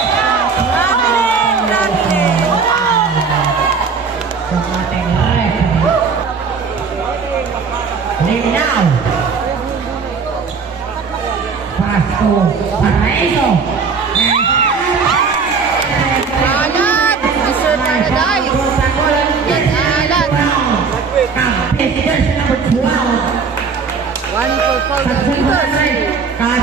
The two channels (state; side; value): quieter; left; 5.3 dB